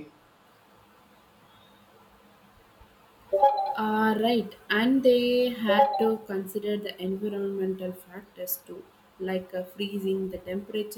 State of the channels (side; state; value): both; identical; correlation 1.00